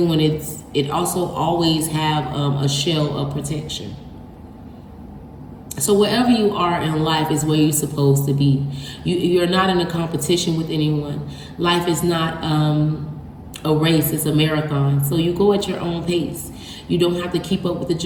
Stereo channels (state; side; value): identical; both; correlation 1.00